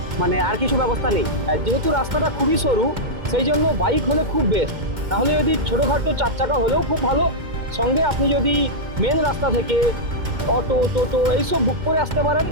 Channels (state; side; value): late; left; 2.1 ms